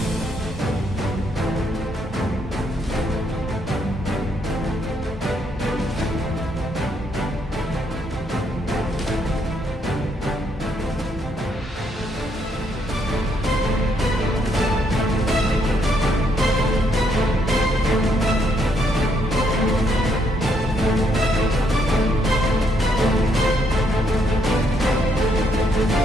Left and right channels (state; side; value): normal; both; correlation 0.73